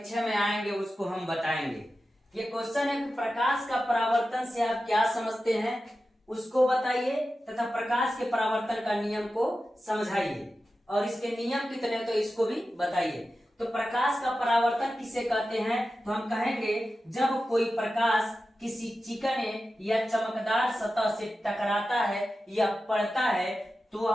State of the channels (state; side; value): normal; both; correlation 0.93